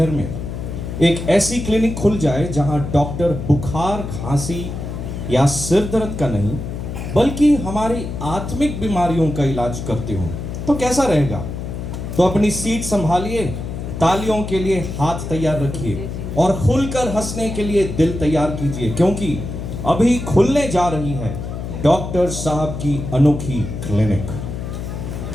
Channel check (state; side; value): noise; left; hum, 6 dB below the sound